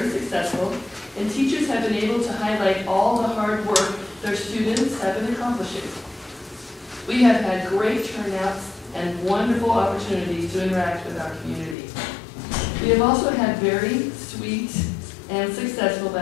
successful, and teachers have been able to highlight all the hard work their students have been accomplishing. We have had great turnouts and wonderful opportunities to interact with our community. We have also had very sweet and successful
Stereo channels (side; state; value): right; drops out; at 11.8 s